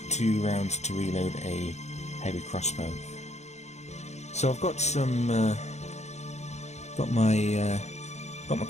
2 rounds to reload a heavy crossbow. So I've got some got my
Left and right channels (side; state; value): right; late; 0.33 ms